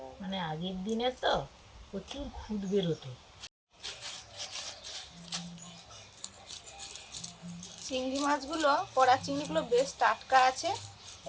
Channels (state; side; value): identical; both; correlation 1.00